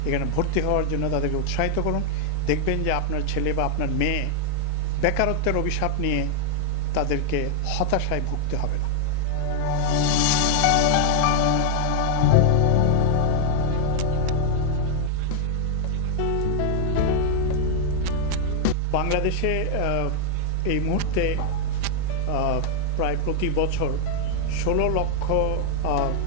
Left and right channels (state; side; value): different; both; correlation 0.00